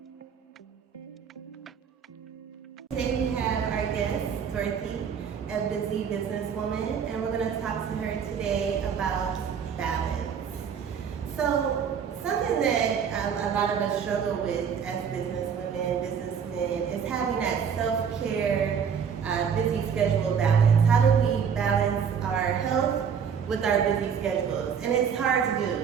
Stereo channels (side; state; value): left; quieter; 7.2 dB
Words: Today we have our guest, Dorothy, a busy businesswoman, and we're going to talk to her today about balance. So, something that a lot of us struggle with as businesswomen, businessmen, is having that self-care, busy schedule balance. How do we balance our health with our busy schedules? And it's hard to